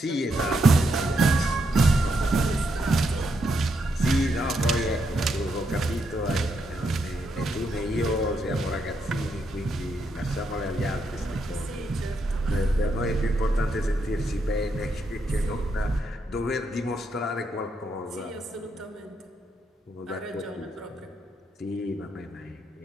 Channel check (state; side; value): normal; both; correlation 0.79